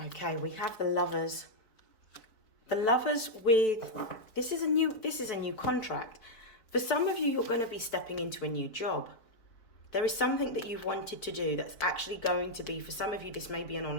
Okay, we have the Lovers. The Lovers with, this is a new contract. For some of you, you're going to be stepping into a new job. There is something that you've wanted to do that's actually going to be, for some of you, this may be an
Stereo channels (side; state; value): right; late; 4.3 ms